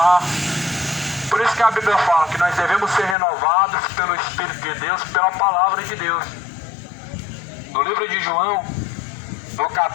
Por isso que a Bíblia fala que nós devemos ser renovados pelo Espírito de Deus, pela palavra de Deus. No livro de João, no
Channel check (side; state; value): right; drops out; at 3.2 s